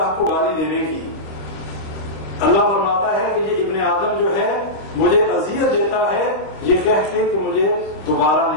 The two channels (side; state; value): right; late; 25 ms